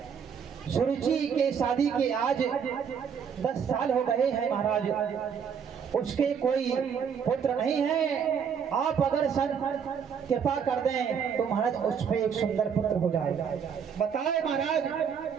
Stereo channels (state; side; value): quieter; left; 7.1 dB